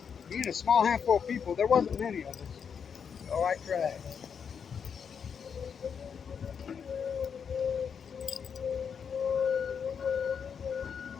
Being a small handful of people, there wasn't many of us. So I tried.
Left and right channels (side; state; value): right; quieter; 6.9 dB